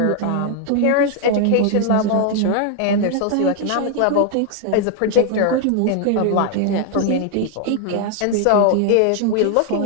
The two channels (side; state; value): both; different; correlation 0.00